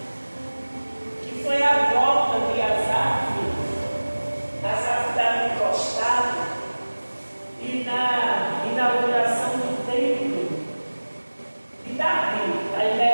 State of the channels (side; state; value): both; inverted; correlation -1.00